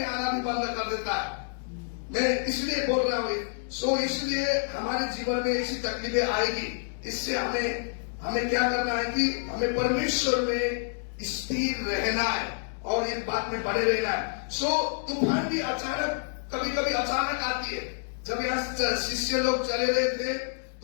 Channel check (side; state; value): right; silent; digital silence